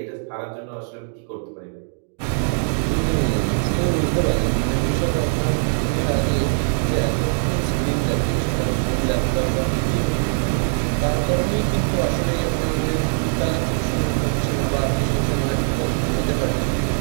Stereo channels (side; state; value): left; silent; digital silence